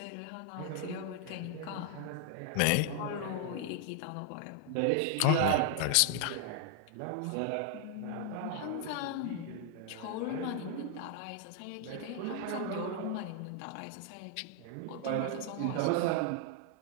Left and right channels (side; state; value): both; different; correlation 0.00